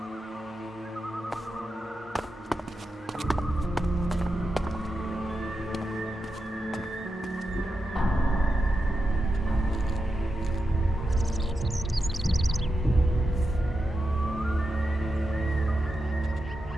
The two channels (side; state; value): both; normal; correlation 0.88